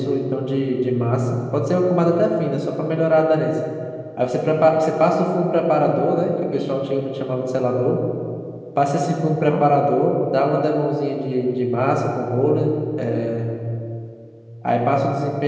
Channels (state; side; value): identical; both; correlation 1.00